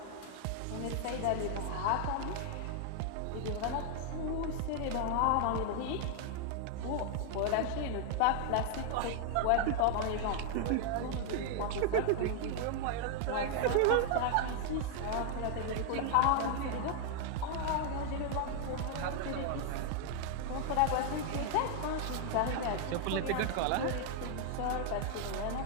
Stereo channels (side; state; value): both; different; correlation 0.00